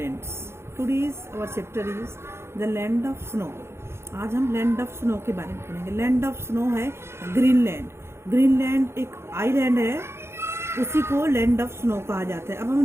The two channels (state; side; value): late; left; 0.12 ms